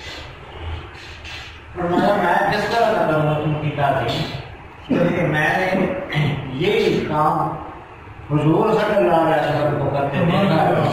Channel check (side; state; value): both; identical; correlation 1.00